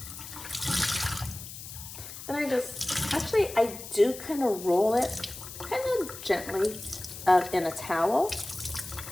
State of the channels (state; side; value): noise; left; hiss, 12 dB below the sound